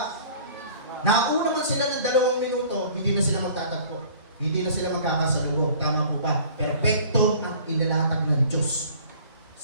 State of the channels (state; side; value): inverted; both; correlation -0.49